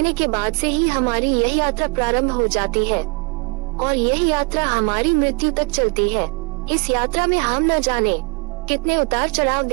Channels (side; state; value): left; quieter; 28.6 dB